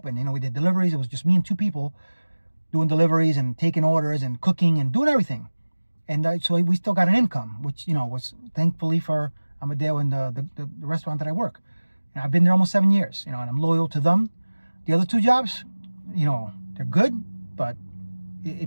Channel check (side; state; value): both; inverted; correlation -1.00